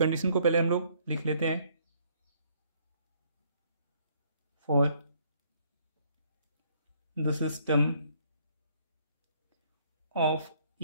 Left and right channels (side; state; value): both; inverted; correlation -0.65